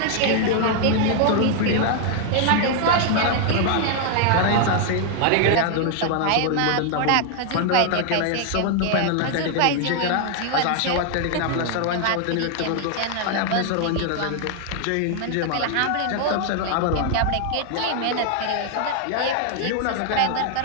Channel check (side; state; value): both; different; correlation 0.00